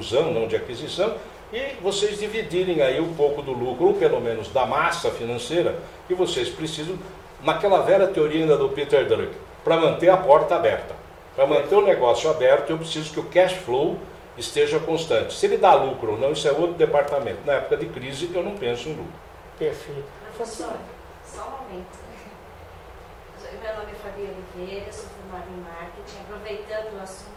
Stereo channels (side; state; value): both; identical; correlation 1.00